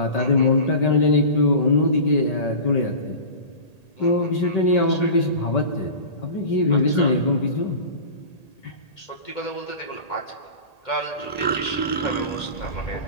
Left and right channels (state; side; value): late; right; 1.8 ms